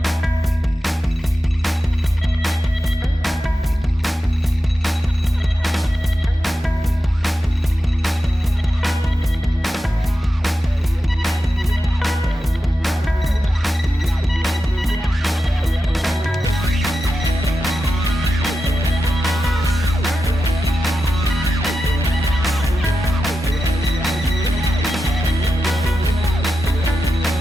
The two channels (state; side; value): normal; both; correlation 0.90